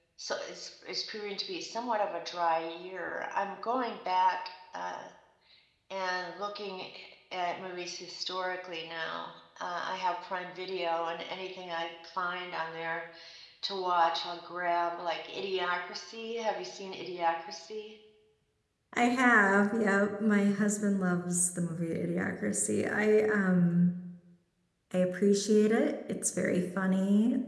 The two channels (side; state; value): both; identical; correlation 1.00